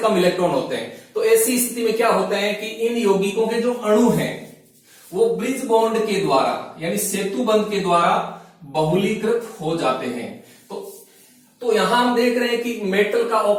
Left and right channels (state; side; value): identical; both; correlation 1.00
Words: इलेक्ट्रॉन होते हैं। तो ऐसी स्थिति में क्या होता है कि इन यौगिकों के जो अणु हैं वो ब्रिज बॉन्ड के द्वारा यानी सेतु बंध के द्वारा बहुलीकृत हो जाते हैं। तो यहां हम देख रहे हैं कि मेटल का